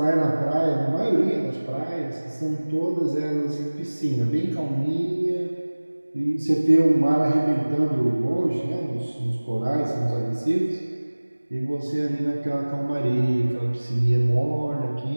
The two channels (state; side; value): inverted; both; correlation -1.00